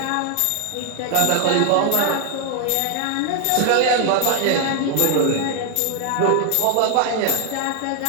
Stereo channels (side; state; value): both; different; correlation 0.00